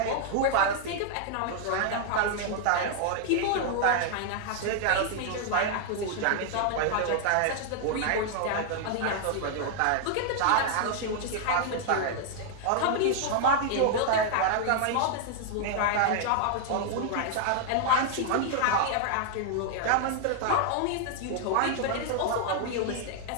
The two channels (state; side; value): different; both; correlation 0.00